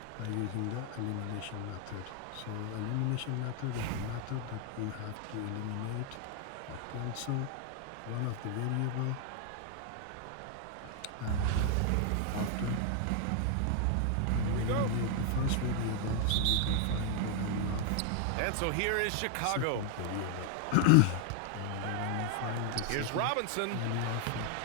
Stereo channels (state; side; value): different; both; correlation 0.00